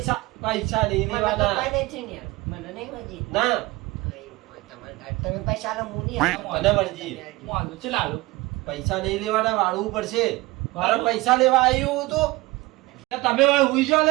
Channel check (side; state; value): left; quieter; 20.8 dB